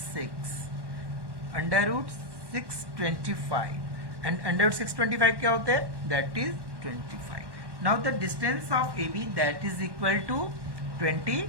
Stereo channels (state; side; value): late; left; 1.1 ms